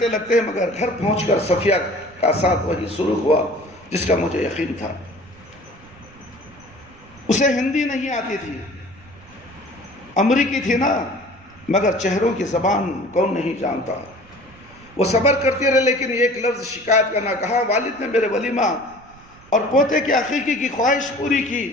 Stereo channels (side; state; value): right; noise; rumble, 24 dB below the sound